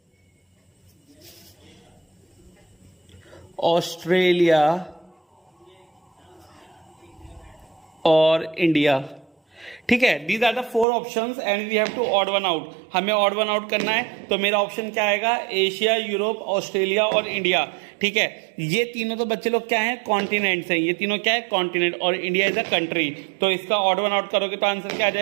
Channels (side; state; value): left; drops out; at 10.9 s